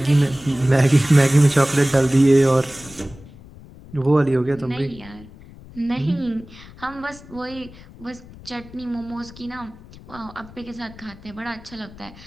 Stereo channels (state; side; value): noise; left; rumble, 20 dB below the sound